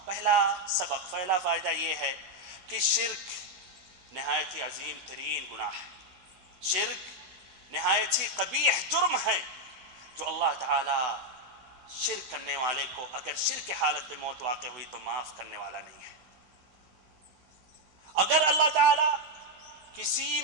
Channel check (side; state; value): left; late; 16 ms